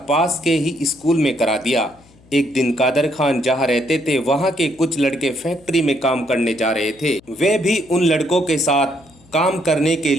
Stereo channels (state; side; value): noise; left; hum, 28 dB below the sound